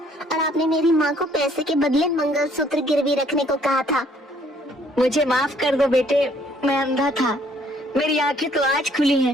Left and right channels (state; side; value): normal; both; correlation 0.63